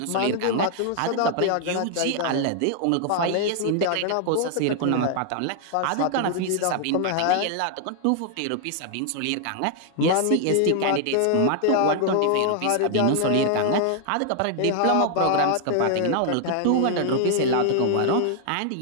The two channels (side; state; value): both; different; correlation 0.00